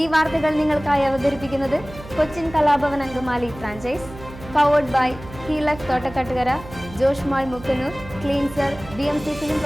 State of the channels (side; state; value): right; noise; hum, 16 dB below the sound